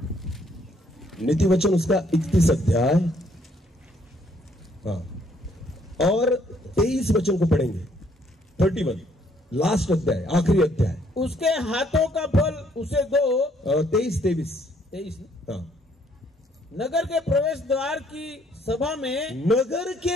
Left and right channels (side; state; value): both; normal; correlation 0.66